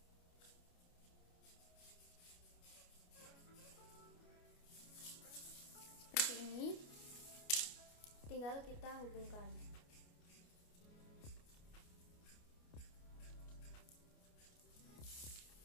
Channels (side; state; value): right; late; 29 ms